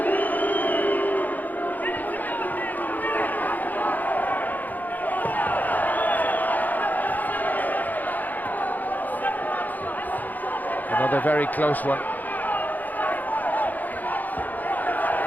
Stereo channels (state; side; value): late; right; 0.083 ms